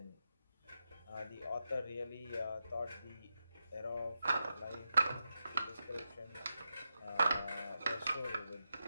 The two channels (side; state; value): both; inverted; correlation -0.88